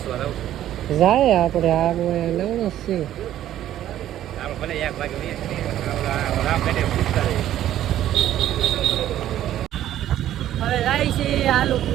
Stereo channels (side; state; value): left; quieter; 12.3 dB